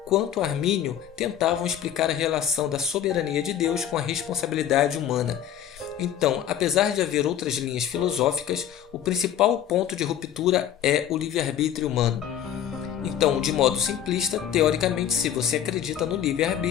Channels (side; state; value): right; quieter; 10.1 dB